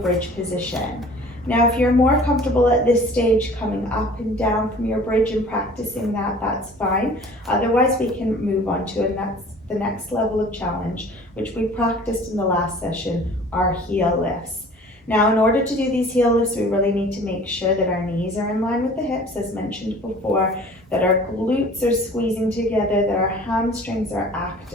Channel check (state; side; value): normal; both; correlation 0.47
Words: position. Now if you're more comfortable at this stage coming up and down from your bridge and practicing that, that's fine. Otherwise we can move on to the next level of challenge, which we practiced in the last session, our heel lifts. Now in order to do these heel lifts, we really need to make sure that our knees are in line with the hips, as mentioned before, that our glutes are squeezing together, that our hamstrings are